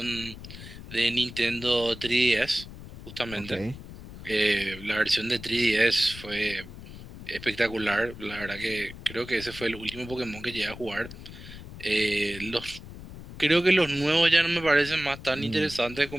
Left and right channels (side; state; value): left; noise; rumble, 14 dB below the sound